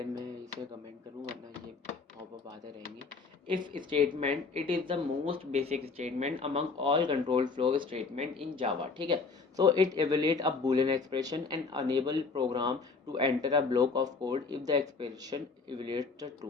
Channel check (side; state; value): right; quieter; 4.4 dB